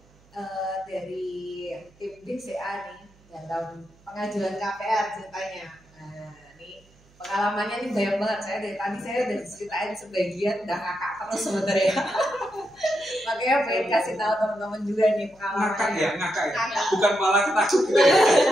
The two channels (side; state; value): right; noise; hum, 30 dB below the sound